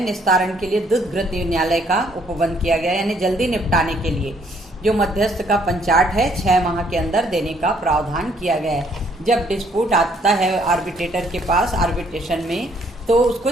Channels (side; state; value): both; normal; correlation 0.66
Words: के लिए द्रुत न्यायालय का उपबंध किया गया, यानी जल्दी निपटाने के लिए जो मध्यस्थ का पंचायत है 6 माह के अंदर देने का प्रावधान किया गया है। जब डिस्प्यूट आता है आर्बिट्रेटर के पास आर्बिट्रेशन में, तो